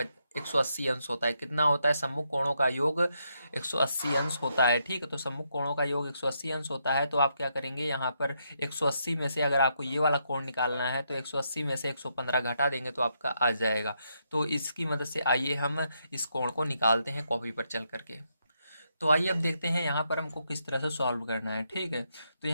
180 अंश होता है। कितना होता है? सम्मुख कोणों का योग 180 अंश होता है। ठीक है, तो सम्मुख कोणों का योग 180 अंश होता है। तो आप क्या करेंगे, यहाँ पर 180 में से अगर आपको ये वाला कोण निकालना है तो 180 में से 115 घटा देंगे तो आपका आ जाएगा। तो इसकी मदद से आइए हम इस कोण को निकालते हैं कॉपी पर चल करके। तो आइए अब देखते हैं यहाँ पर हमको किस तरह से सॉल्व करना है। ठीक है, तो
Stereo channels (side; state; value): both; inverted; correlation -0.79